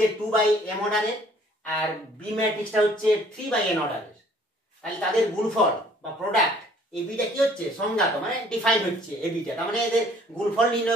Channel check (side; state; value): both; normal; correlation 0.57